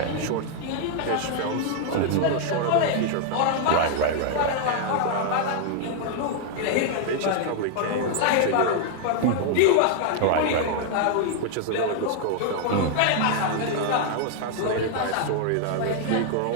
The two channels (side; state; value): both; different; correlation 0.00